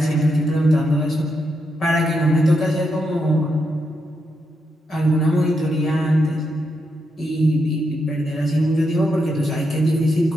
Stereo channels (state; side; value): normal; both; correlation 0.82